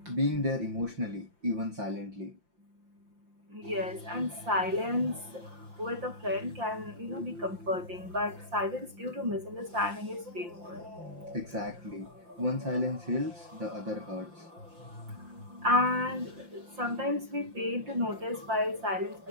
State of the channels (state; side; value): late; left; 5.7 ms